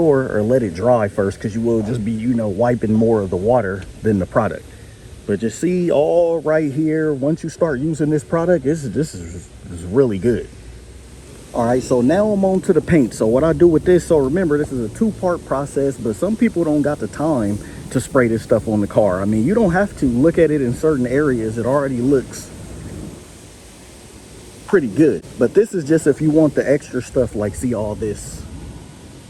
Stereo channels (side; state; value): both; identical; correlation 1.00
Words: or let it dry first, because you will just be, you know, wiping more of the water than the product. But you see all right here, once you start using this product, this is really good. All right, so now I'm on to the paint. So what I do with this, so remember, this is a 2-part process, but some people don't got the time to spray this stuff on the car. I mean, you don't have to. Look at it in certain areas. It already looks pretty good. But this is just if you want the extra stuff, like see all this.